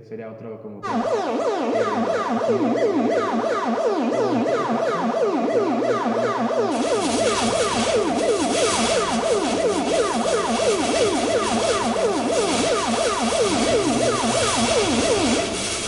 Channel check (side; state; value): both; identical; correlation 1.00